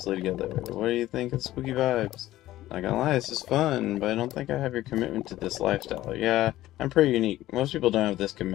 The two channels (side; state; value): right; quieter; 15.2 dB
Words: together. What do you think of spooky vibes? Not gonna lie, this is fun, but I don't think I have your commitment to this lifestyle. Yeah, I'm pretty unique. Most people don't have this